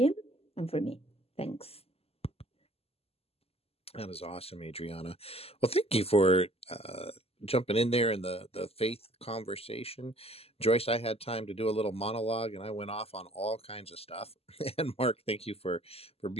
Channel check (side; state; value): right; late; 0.29 ms